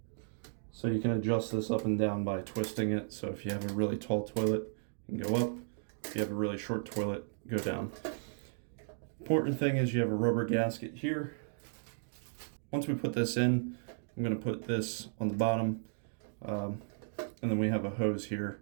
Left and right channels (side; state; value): left; silent; digital silence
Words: So you can adjust this up and down by twisting it. So if you have a really tall toilet, you can go up. If you have a really short toilet, go down. Important thing is you have a rubber gasket here. Once we put this in, I'm going to put this on the bottom. And then we have a hose